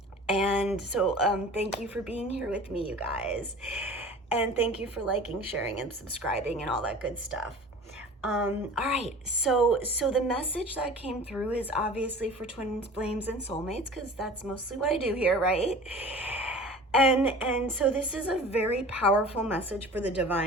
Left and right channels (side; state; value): both; normal; correlation 0.41